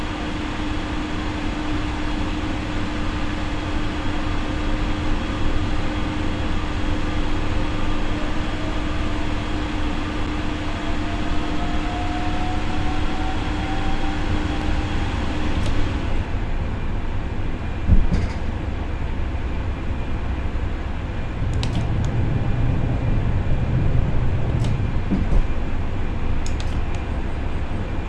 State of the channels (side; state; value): both; identical; correlation 1.00